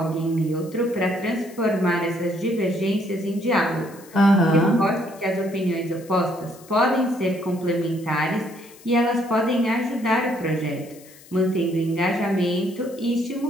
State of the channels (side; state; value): left; noise; hiss, 23 dB below the sound